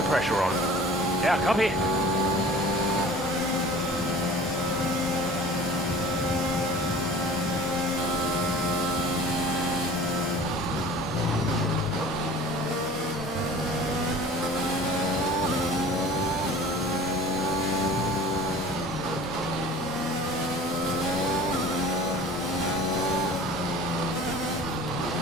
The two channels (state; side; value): normal; both; correlation 0.43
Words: pressure on. Yeah, copy.